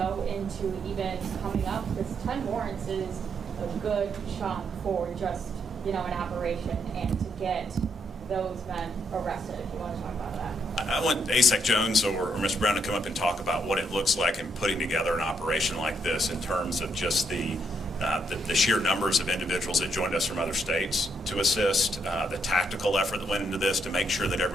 into even coming up, because 10 warrants is a good chunk for just, an operation, and to get those men arrested, if you want to talk about that. I want ASEC Jones or Mr. Brown to come up and talk about what it looks like in putting together an operation like this in terms of just the sheer numbers of individuals that joined us from other states to assist, the tactical effort that went into this to make sure that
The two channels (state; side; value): normal; both; correlation 0.75